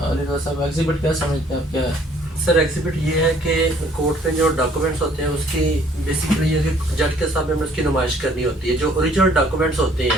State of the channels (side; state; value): both; normal; correlation 0.60